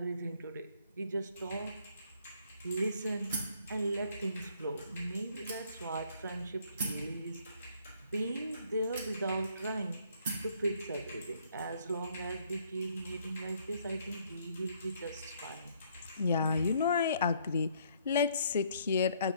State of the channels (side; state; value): both; inverted; correlation -0.65